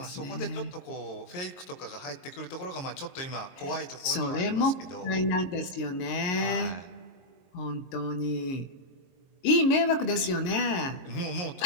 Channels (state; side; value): late; right; 22 ms